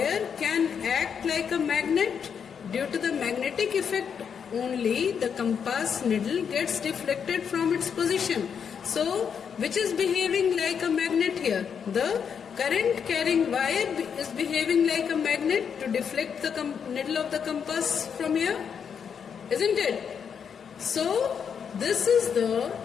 can act like a magnet. Due to the magnetic effect only, the compass needle gets deflected from its position. So which is behaving like a magnet here? The current carrying wire is behaving like a magnet to deflect the needle of the compass from here, isn't it? So this is the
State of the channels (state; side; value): quieter; right; 7.1 dB